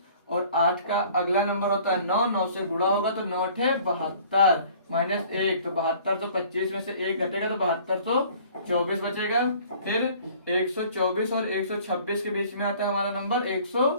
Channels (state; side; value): inverted; both; correlation -0.52